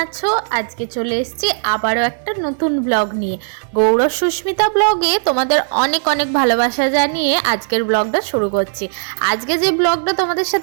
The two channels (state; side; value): silent; left; 68 dB below the other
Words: আছো? আজকে চলে এসেছি আবারও একটা নতুন ব্লগ নিয়ে। গৌরব সুস্মিতা ব্লগে তোমাদের অনেক অনেক ভালোবাসা জানিয়ে আজকের ব্লগটা শুরু করছি। আজকে যে ব্লগটা তোমাদের